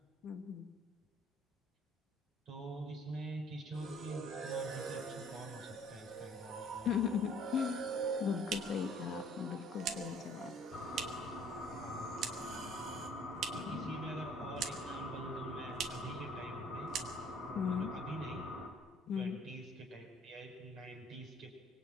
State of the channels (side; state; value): both; normal; correlation 0.57